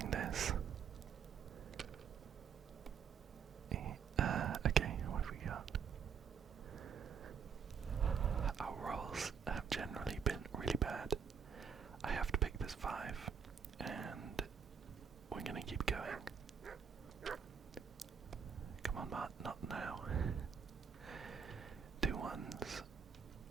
this. Okay, what have we got? Our rolls have generally been really bad. I have to pick this 5, and we're gonna keep going. Come on, Matt, not now. 2 1s.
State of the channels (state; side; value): quieter; left; 6.9 dB